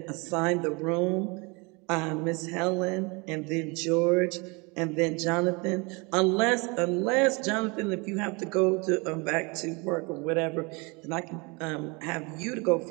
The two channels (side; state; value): left; quieter; 28.8 dB